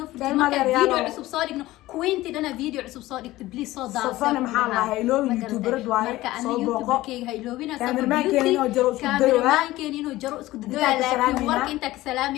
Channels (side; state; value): right; quieter; 17.2 dB